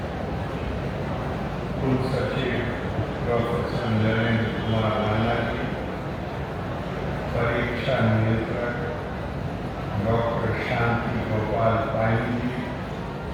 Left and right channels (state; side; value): identical; both; correlation 1.00